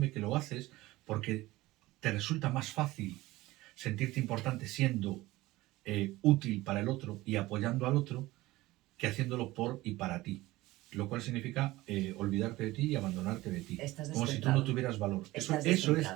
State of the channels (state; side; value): quieter; left; 18.6 dB